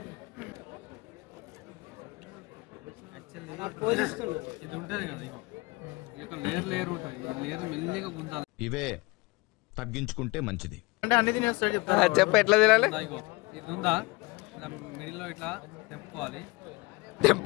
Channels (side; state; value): right; quieter; 24.4 dB